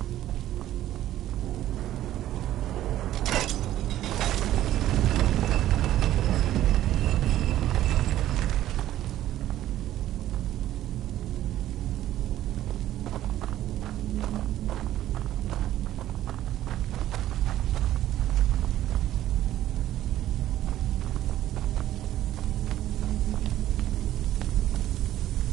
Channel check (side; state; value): left; quieter; 13.2 dB